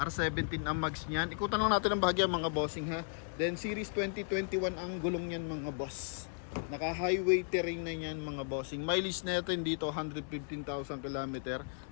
ang mags niyan. Ikutan lang natin ang bahagya mga bossing ha. Then series 2021 ang gulong niyan mga boss. Naka highway terrain na yan mga bossing. Mileage natin dito 115,000 km.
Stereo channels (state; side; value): silent; right; 54 dB below the other